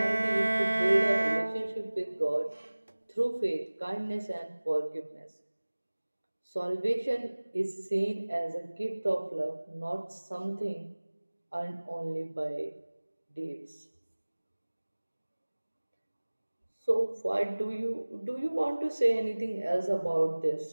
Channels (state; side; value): inverted; both; correlation -1.00